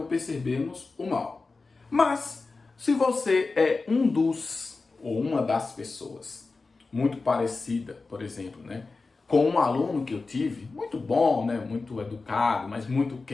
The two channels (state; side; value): quieter; right; 3.9 dB